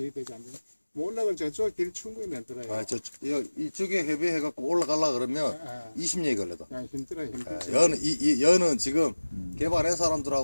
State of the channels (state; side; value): inverted; both; correlation -1.00